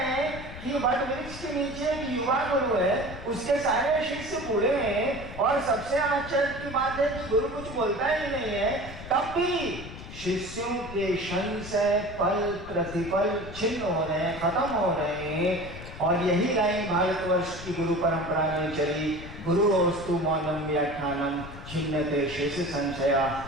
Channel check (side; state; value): left; noise; rumble, 12 dB below the sound